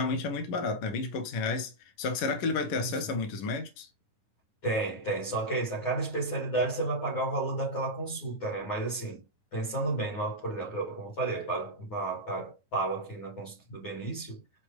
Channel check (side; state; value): right; late; 11 ms